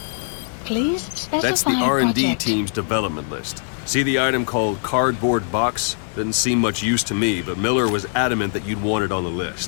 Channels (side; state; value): right; silent; digital silence